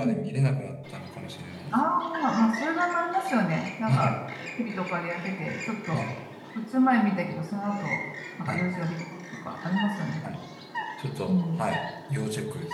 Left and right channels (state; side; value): identical; both; correlation 1.00